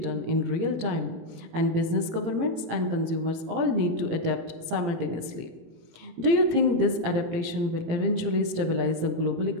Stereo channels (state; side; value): late; left; 18 ms